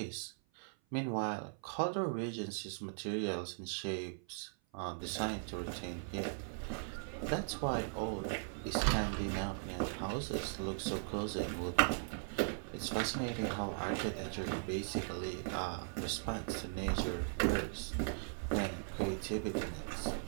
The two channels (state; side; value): silent; left; 52 dB below the other